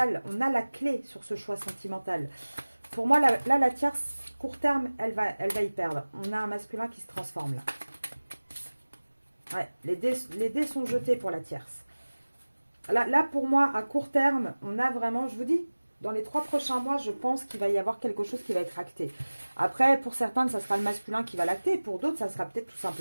On a la clé sur ce choix sentimental. Pour moi, là, la tierce, court terme, elle va y perdre. On a un masculin qui se transforme là. Ouais, les dés sont jetés pour la tierce. Là, pour moi, à court terme, on a vraiment, je vous dis, dans les 3 prochains mois, je pense qu'il va y avoir quelque chose qui va être acté. Après, pour certains, ça sera le masculin qui va l'acter. Pour d'autres, ça sera peut-être tout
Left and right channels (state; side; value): inverted; both; correlation -1.00